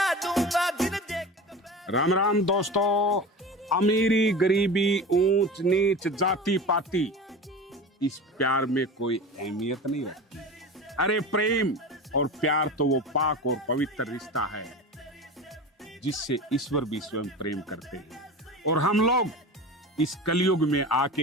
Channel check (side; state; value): both; normal; correlation 0.31